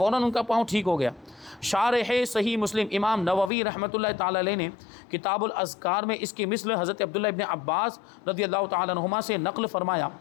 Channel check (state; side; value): drops out; right; at 3.5 s